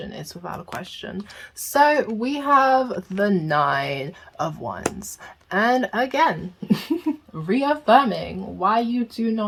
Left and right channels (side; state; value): both; identical; correlation 1.00